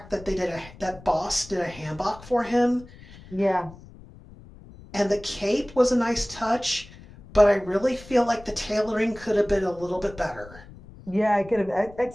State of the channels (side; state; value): left; noise; rumble, 20 dB below the sound